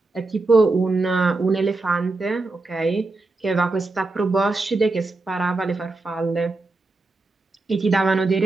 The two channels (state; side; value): quieter; left; 3.4 dB